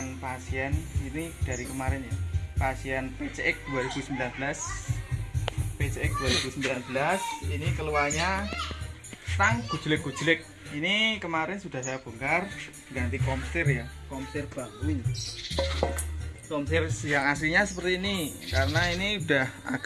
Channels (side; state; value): both; identical; correlation 1.00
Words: pasien ini dari kemarin ya. Pasien PCX 2019. PCX 2019 ini keluarnya stang gujlek-gujlek. Ini kemarin sudah saya bongkar, ganti komstir ya, komstir baru ini. Komstir yang aslinya seperti ini, karena ini udah